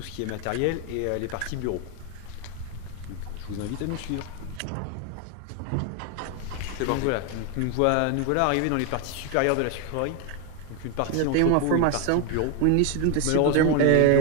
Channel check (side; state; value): both; different; correlation 0.01